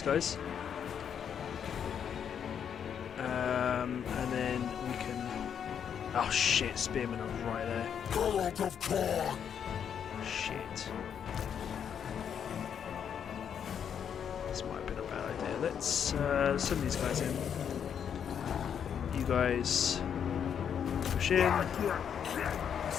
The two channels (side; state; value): right; quieter; 8.1 dB